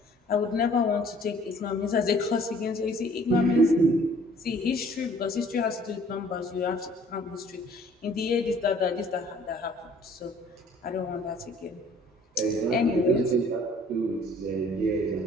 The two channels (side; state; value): both; normal; correlation 0.55